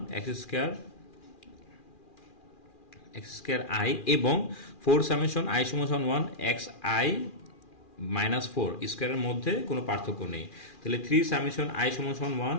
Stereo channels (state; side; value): late; right; 2.4 ms